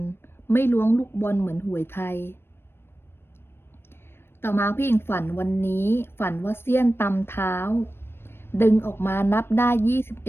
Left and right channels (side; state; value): right; late; 0.11 ms